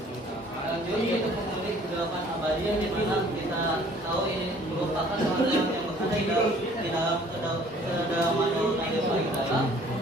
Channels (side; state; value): both; normal; correlation 0.55